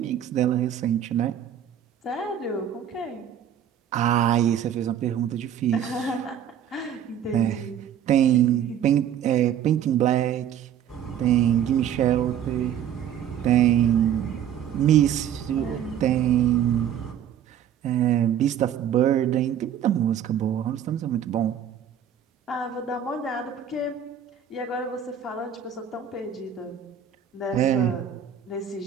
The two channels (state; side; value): quieter; left; 9.3 dB